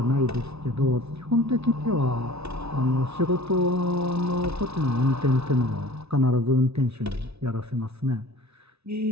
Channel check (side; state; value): left; late; 0.80 ms